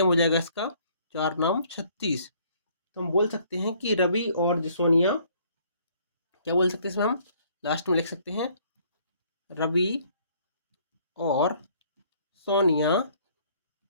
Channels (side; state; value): both; inverted; correlation -0.61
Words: हो जाएगा इसका 4 नाम 36। तो हम बोल सकते हैं कि रवि और सोनिया, क्या बोल सकते हैं इसमें हम लास्ट में लिख सकते हैं, रवि और सोनिया